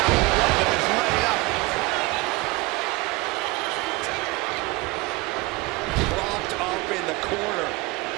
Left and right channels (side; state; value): left; quieter; 22.9 dB